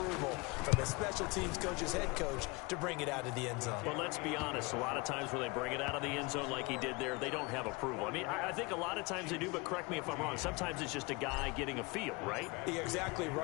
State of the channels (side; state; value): right; quieter; 25.9 dB